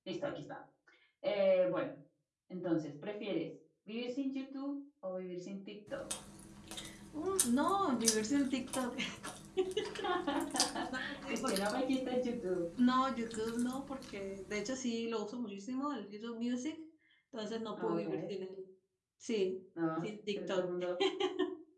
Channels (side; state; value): both; identical; correlation 1.00